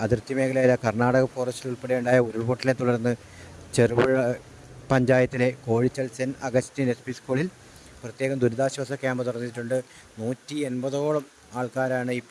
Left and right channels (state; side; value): identical; both; correlation 1.00